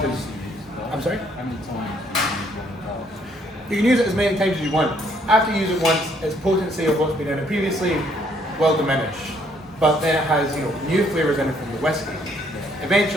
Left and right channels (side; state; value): both; normal; correlation 0.67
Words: 'cause, I'm sorry? You can use it as many times as you want. After you use it once, its potency of what's been in it previously will diminish. But then it has, you know, new flavors in it from the whiskey.